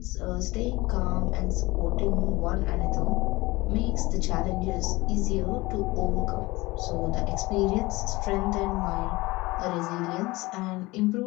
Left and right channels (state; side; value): quieter; right; 21.3 dB